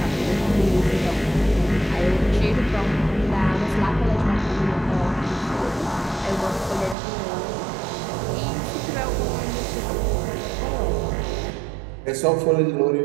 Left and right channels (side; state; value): left; drops out; at 7.0 s